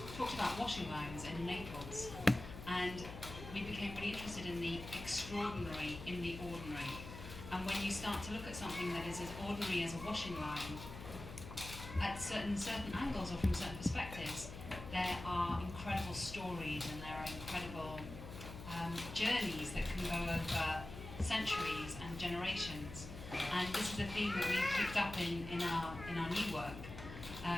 talked about washing lines in Naples, and we became really interested in the extraordinary in the ordinary. And when you start to look at something that is as ordinary as a washing line, at certain angles or from certain perspectives, there are incredible stories and there are incredible journeys that can go over centuries and generations. And this is a theme that we've picked up in our new work,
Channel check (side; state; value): left; noise; hum, 11 dB below the sound